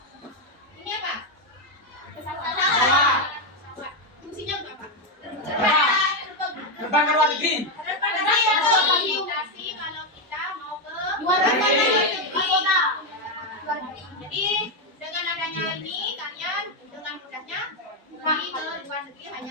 ini apa? Pesawat. Fungsinya untuk apa? Terbang ke luar negeri. Komunikasi kalau kita mau ke luar negeri. Jadi dengan adanya ini kalian dengan mudahnya pergi ke luar negeri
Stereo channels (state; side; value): normal; both; correlation 0.05